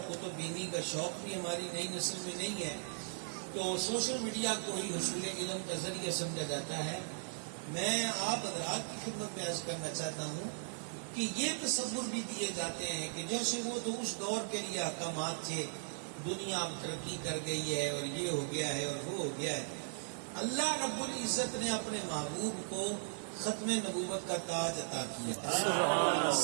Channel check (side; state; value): left; silent; digital silence